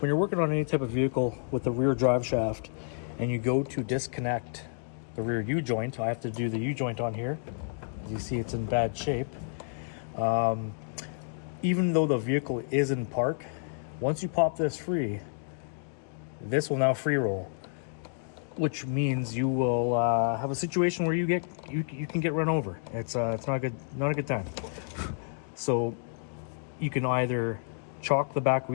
you're working on any type of vehicle with the rear drive shaft and you go to disconnect the rear U-joint, I have to do the U-joint on here. As you see, it's in bad shape. Even though the vehicle is in park, once you pop this free, this will now free roll, which means you will have a situation where you can get run over. It's not a good time. So you can either chalk the back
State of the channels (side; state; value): right; silent; digital silence